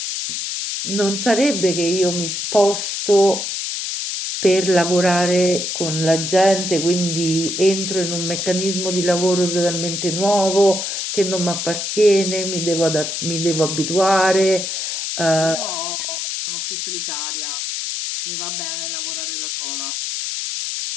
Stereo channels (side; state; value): left; noise; hiss, 3 dB below the sound